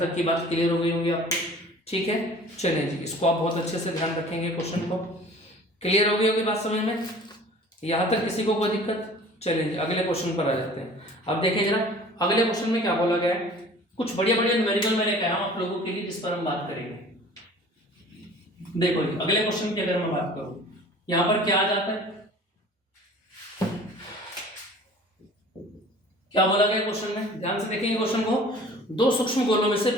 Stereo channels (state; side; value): normal; both; correlation 0.46